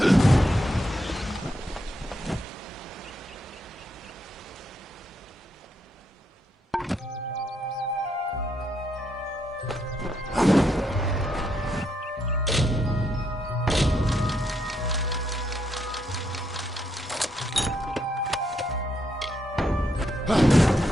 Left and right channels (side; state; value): both; normal; correlation 0.77